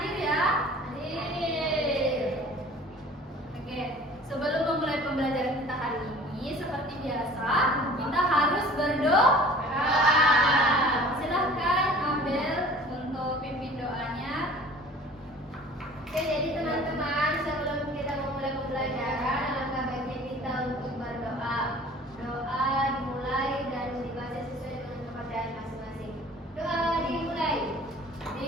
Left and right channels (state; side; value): normal; both; correlation 0.47